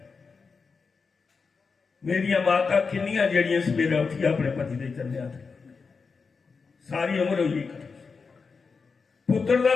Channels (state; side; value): quieter; right; 4.9 dB